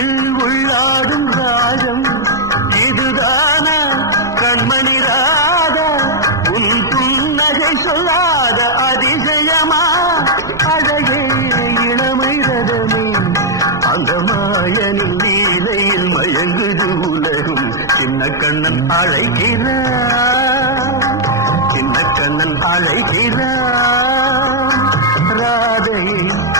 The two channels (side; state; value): right; noise; hum, 21 dB below the sound